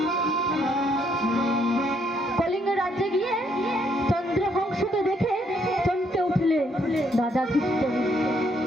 কলিঙ্গ রাজ্যে গিয়ে চন্দ্রহংসকে দেখে চমকে উঠলে রাজা ধৃষ্টবুদ্ধি।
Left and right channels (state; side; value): normal; both; correlation 0.70